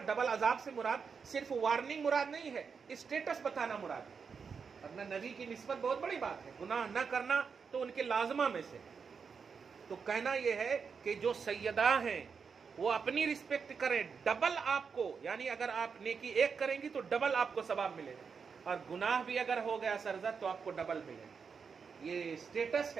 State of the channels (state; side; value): quieter; left; 5.8 dB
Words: डबल अजाब से मुराद सिर्फ वार्निंग मुराद नहीं है, स्टेटस बताना मुराद है। अपना नबी की निस्बत बहुत बड़ी बात है, गुनाह न करना तो उनके लाजमा में से। तो कहना यह है कि जो सैयदा हैं वो अपनी रिस्पेक्ट करें, डबल आपको, यानी अगर आप नेकी एक करेंगी तो डबल आपको सवाब मिलेगा, और गुनाह भी अगर हो गया सरजद तो आपको डबल मिलेगा। ये स्टेटस